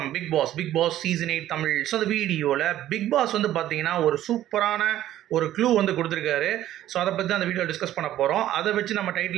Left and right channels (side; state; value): left; quieter; 13.1 dB